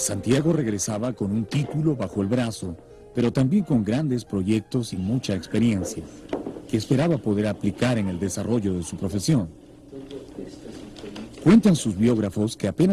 regresaba con un título bajo el brazo, pero también con grandes proyectos y mucha experiencia, que esperaba poder aplicar en el desarrollo de su profesión. Cuentan sus biógrafos que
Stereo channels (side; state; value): both; identical; correlation 1.00